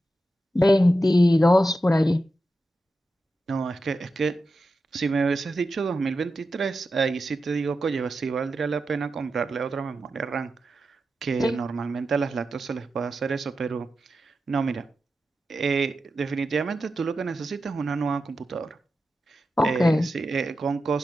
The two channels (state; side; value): normal; both; correlation 0.90